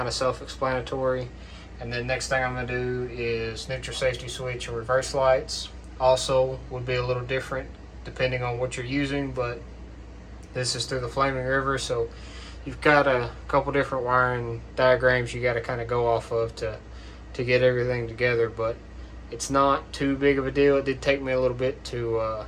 of self-explanatory. And then next thing I'm going to do is neutral safety switch and reverse lights. Also would be a little different depending on what you're using, but this is through the Flaming River, so you've got a couple different wiring diagrams you got to kind of go off of to get everything together. But it's not too big of a deal. It did take me a little bit to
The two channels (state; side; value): identical; both; correlation 1.00